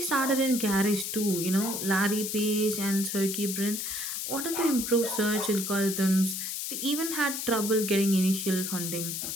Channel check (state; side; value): noise; left; hiss, 4 dB below the sound